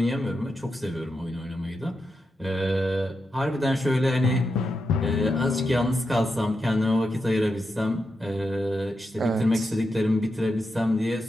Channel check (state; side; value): normal; both; correlation 0.87